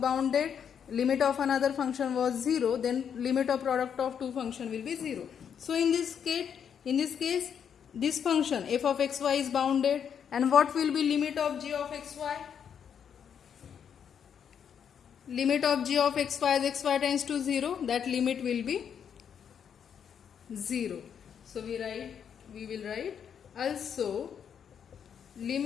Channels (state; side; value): quieter; right; 7.9 dB